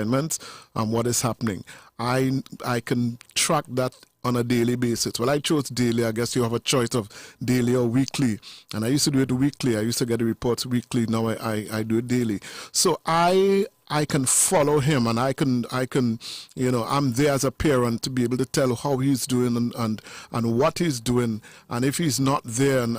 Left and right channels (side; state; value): both; identical; correlation 1.00